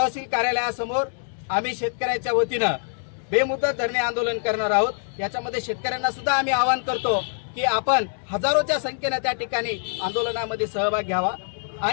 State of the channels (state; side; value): silent; right; digital silence